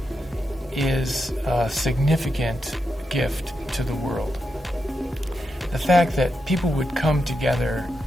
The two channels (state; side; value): normal; both; correlation 0.86